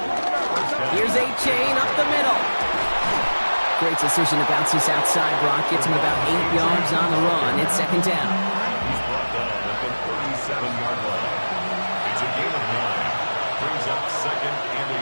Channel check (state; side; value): inverted; both; correlation -1.00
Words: Here's A-Chain up the middle. Great decision to bounce this outside. Brock gets him about 8 yards on the run. It's second down. He's brought down at the 37-yard line. It's a gain of 9. Brings up second and a